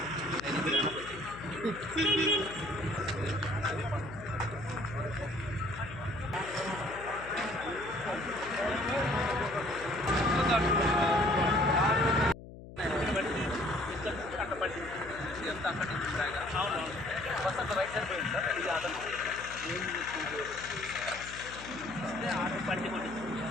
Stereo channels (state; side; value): noise; left; hum, 15 dB below the sound